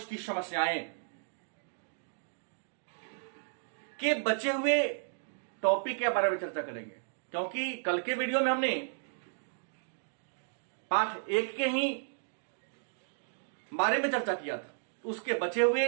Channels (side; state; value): left; silent; digital silence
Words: समस्याएं के बचे हुए टॉपिक के बारे में चर्चा करेंगे, क्योंकि कल के वीडियो में हमने पाठ 1 के ही बारे में चर्चा किया था। उसके बचे